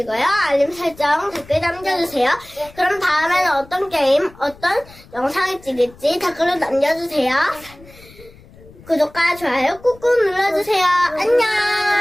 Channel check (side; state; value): left; noise; rumble, 23 dB below the sound